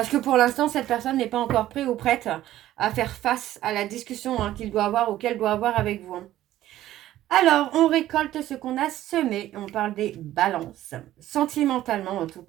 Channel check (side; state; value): left; quieter; 13.8 dB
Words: que pour l'instant, cette personne n'est pas encore prête ou prête à faire face à la discussion qu'il doit avoir ou qu'elle doit avoir avec vous. Alors, on récolte ce qu'on a semé. On parle des balances. Sentimentalement, en tout